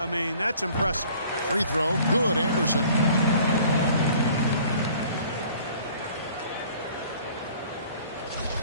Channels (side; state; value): both; inverted; correlation -0.53